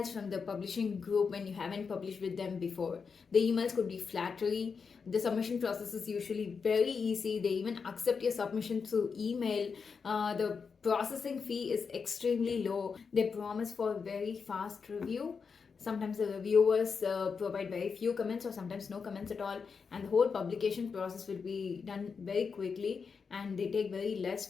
from the publishing group when you haven't published with them before. The emails could be flattery. The submission process is usually very easy. They even accept your submission through email. The processing fee is extremely low. They promise for very fast review. Sometimes the reviewers provide very few comments or sometimes no comments at all, and the whole publication process will be done very quickly, and they take very less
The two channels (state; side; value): quieter; right; 5.6 dB